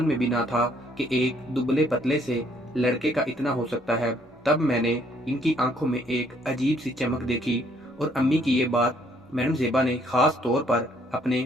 में भी ना था कि एक दुबले पतले से लड़के का इतना हो सकता है। तब मैंने इनकी आंखों में एक अजीब सी चमक देखी। और अम्मी की ये बात मैडम ज़ेबा ने खास तौर पर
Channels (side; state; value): both; normal; correlation 0.66